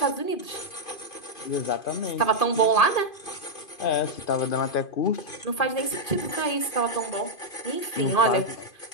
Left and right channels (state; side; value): late; right; 2.5 ms